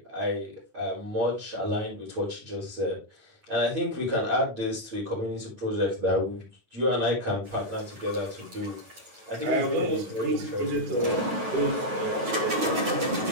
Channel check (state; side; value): late; left; 9.2 ms